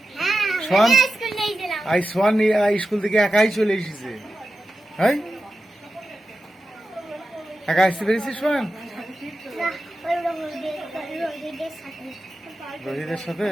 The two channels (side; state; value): both; normal; correlation 0.91